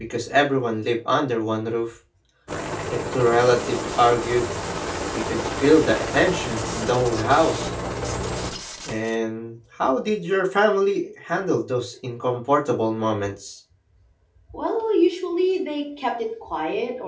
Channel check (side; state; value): both; identical; correlation 1.00